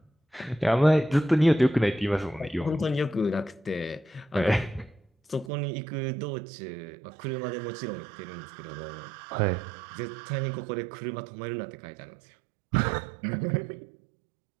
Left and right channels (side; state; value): left; drops out; at 5.5 s